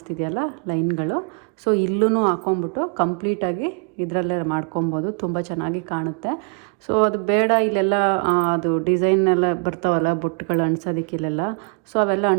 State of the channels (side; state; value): left; quieter; 37.7 dB